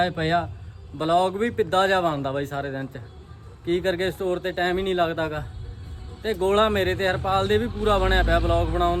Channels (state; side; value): identical; both; correlation 1.00